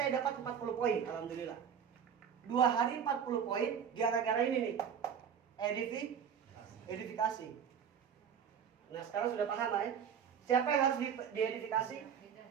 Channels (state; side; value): quieter; left; 7.8 dB